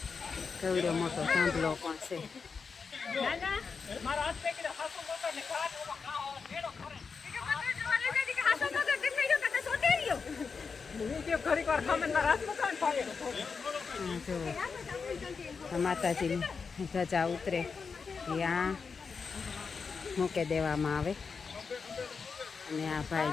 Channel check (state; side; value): quieter; right; 5.3 dB